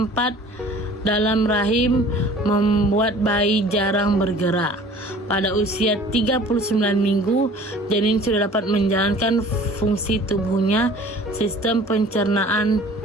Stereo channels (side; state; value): both; normal; correlation 0.48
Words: dalam rahim membuat bayi jarang bergerak. Pada usia 39 minggu, janin sudah dapat menjalankan fungsi tubuhnya, sistem pencernaan